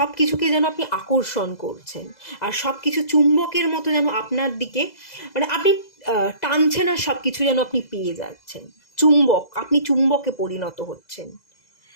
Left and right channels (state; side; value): late; right; 2.0 ms